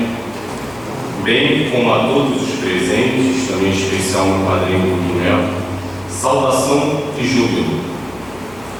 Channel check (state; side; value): noise; left; hum, 25 dB below the sound